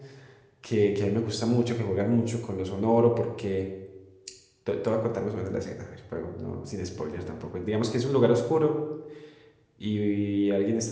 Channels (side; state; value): both; identical; correlation 1.00